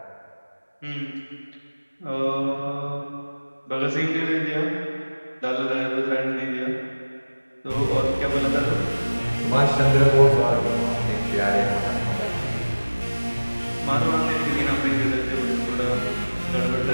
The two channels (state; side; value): inverted; both; correlation -1.00